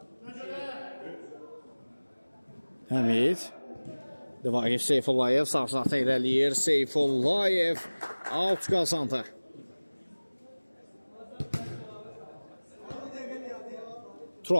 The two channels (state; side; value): inverted; both; correlation -1.00